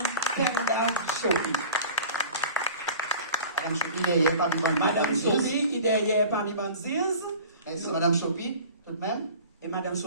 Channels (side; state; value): both; inverted; correlation -0.42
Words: Penda Chopi. Madame Chopi, derrière parmi les Madame Chopi, derrière parmi les bandises. C'est Madame Chopi, tout de même. Et Madame